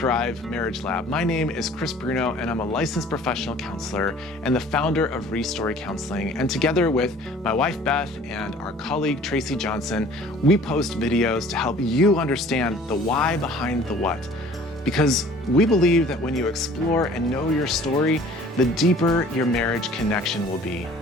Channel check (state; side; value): normal; both; correlation 0.50